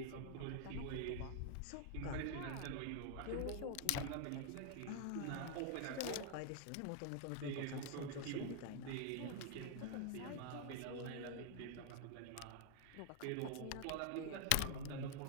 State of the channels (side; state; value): both; different; correlation 0.00